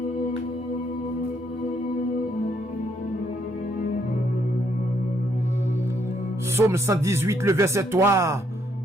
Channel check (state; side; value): normal; both; correlation 0.72